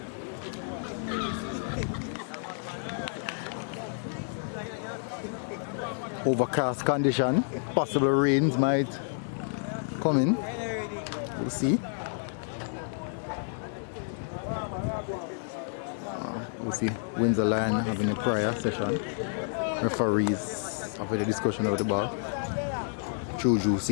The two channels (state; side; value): silent; right; digital silence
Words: Overcast condition, possible rains might come in. We'll see. We'll see Windsor Lion having a prayer session. Referees having a discussion over the ball. Juju